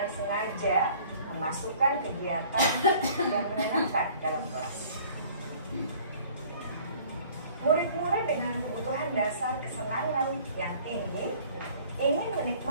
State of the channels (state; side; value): inverted; both; correlation -0.52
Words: sengaja memasukkan kegiatan yang menyenangkan dalam kelas. Murid-murid dengan kebutuhan dasar kesenangan yang tinggi ingin